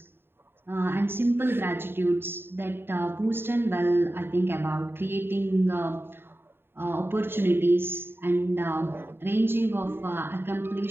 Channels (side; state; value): left; late; 0.11 ms